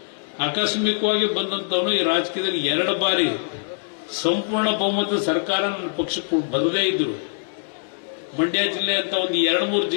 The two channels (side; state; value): right; silent; digital silence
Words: ಆಕಸ್ಮಿಕವಾಗಿ ಬಂದಂತವನು ಈ ರಾಜಕೀಯದಲ್ಲಿ 2 ಬಾರಿ ಸಂಪೂರ್ಣ ಬಹುಮತದ ಸರ್ಕಾರ ನನ್ನ ಪಕ್ಷಕ್ಕೆ ಬರದೇ ಇದ್ರು. ಮಂಡ್ಯ ಜಿಲ್ಲೆ ಅಂತ ಒಂದು 2-3